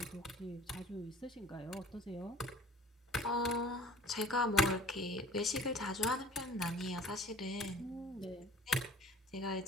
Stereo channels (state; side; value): normal; both; correlation 0.48